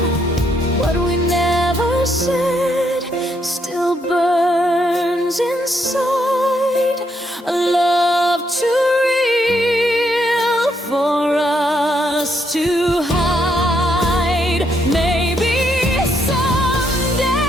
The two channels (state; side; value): normal; both; correlation 0.76